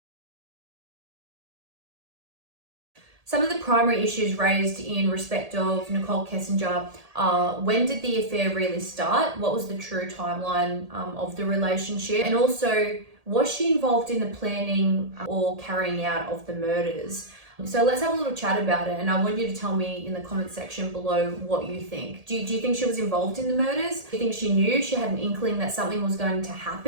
Some of the primary issues raised in respect of Nichol Kessinger are when did the affair really start? What was the true timeline of the relationship? And also, was she involved in the planning or carrying out of the murders? So let's have a little chat about it, and I want you to tell me in the comment section below what you think. Do you think she was involved in the murders? Do you think she knew, she had an inkling that something was going to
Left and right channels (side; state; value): left; late; 1.8 ms